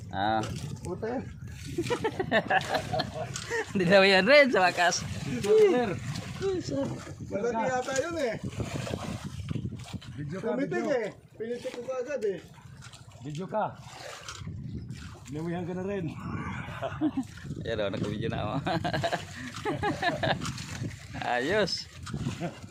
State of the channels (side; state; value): both; identical; correlation 1.00